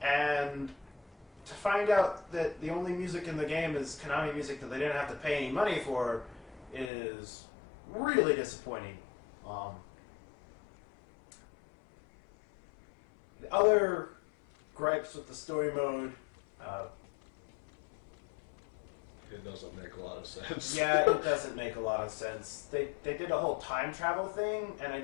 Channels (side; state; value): right; drops out; at 6.9 s